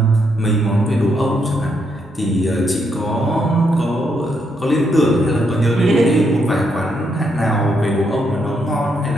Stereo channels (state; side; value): normal; both; correlation 0.77